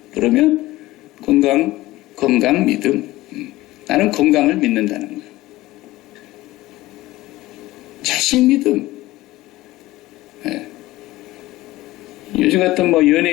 그러면 건강 믿음, 나는 건강을 믿는다는 거예요. 자신 믿음. 네. 요즘 같은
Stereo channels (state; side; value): quieter; right; 17.8 dB